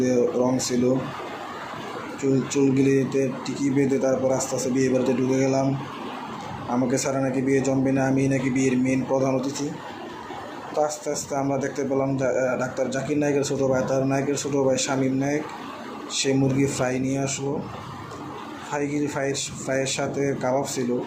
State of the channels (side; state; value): both; identical; correlation 1.00